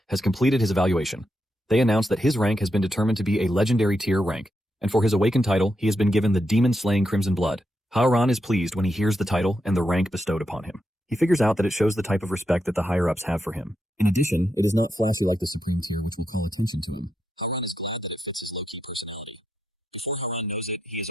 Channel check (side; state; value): both; normal; correlation 0.84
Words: has completed his evaluation. They announce that his rank has been determined to be a legendary tier rank, and for his awakened title, he has been given the demon-slaying Crimson Blood. Haoran is pleased when he hears the title and the rank bestowed upon him. He figures out that it shows the type of respect that the higher-ups have for him. In addition, it is not flashy like the supreme tier, which will call attention to him. Haoran is glad that it fits his low-key personality. Before Haoran knows it, he is